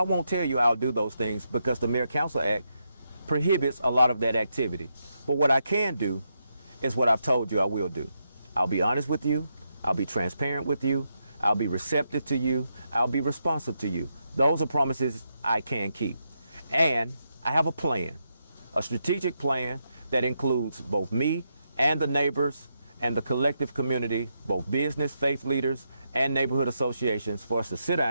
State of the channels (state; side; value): inverted; both; correlation -0.82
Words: won't tell you I'll do those things because the Mayor-Council Act prohibits a lot of that activity. But what I can do is what I've told you I will do. I'll be honest with you. I'll be transparent with you. I'll be receptive to you. I'll be responsive to you. Those are promises I can keep. And I have a plan, a strategic plan that includes both me and the neighbors and the collective community, both business, faith leaders, and neighborhood associations, for us to sit